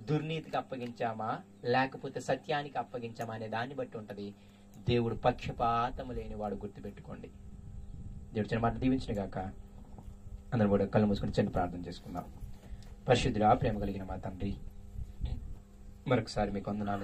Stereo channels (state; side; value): identical; both; correlation 1.00